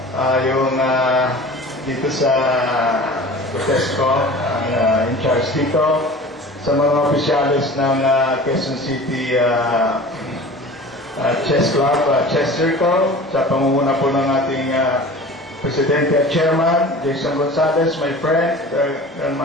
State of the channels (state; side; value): normal; both; correlation 0.40